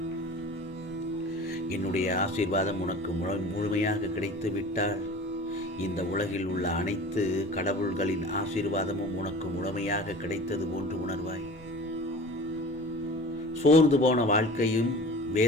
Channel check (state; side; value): normal; both; correlation 0.40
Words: என்னுடைய ஆசீர்வாதம் உனக்கு முழுமையாக கிடைத்து விட்டால் இந்த உலகில் உள்ள அனைத்து கடவுள்களின் ஆசீர்வாதமும் உனக்கு முழுமையாக கிடைத்தது போன்று உணர்வாய். சோர்ந்து போன வாழ்க்கையும்